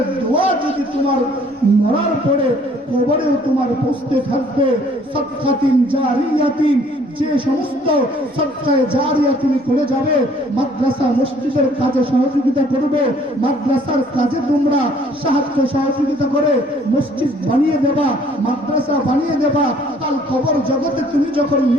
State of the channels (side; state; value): both; normal; correlation 0.59